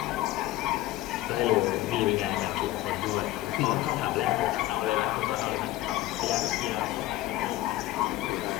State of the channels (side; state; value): right; quieter; 16.2 dB